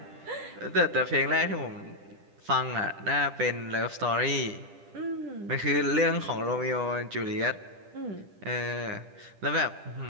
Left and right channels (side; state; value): left; late; 10 ms